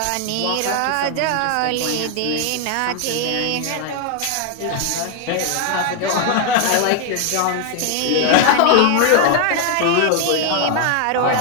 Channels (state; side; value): different; both; correlation 0.00